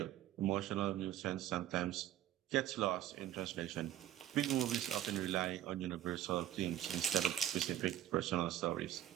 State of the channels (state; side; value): quieter; left; 12.0 dB